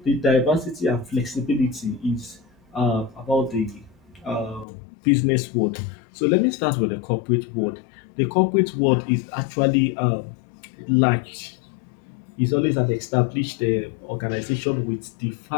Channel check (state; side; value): drops out; right; at 4.7 s